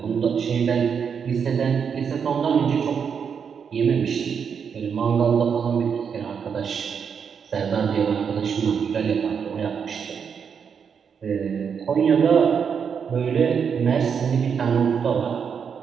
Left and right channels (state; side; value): quieter; left; 6.8 dB